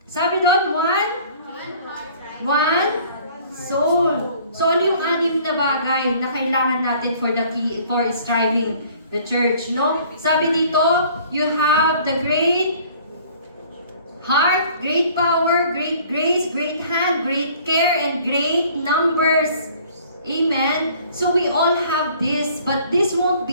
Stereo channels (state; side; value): inverted; both; correlation -0.53